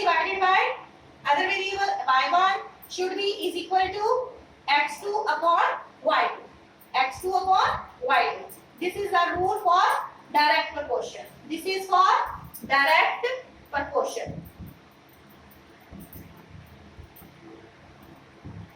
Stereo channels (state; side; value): identical; both; correlation 1.00